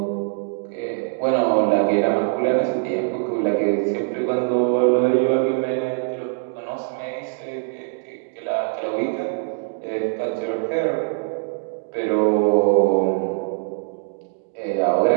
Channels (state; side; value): silent; left; digital silence